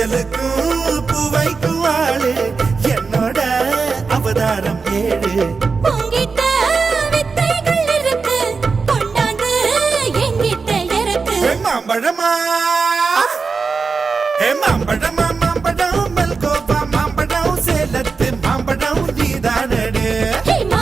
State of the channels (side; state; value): left; quieter; 4.7 dB